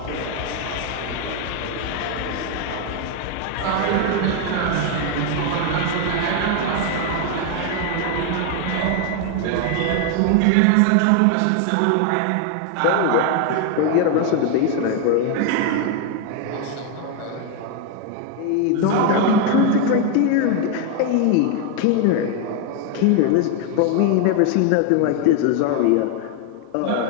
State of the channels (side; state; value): both; different; correlation 0.01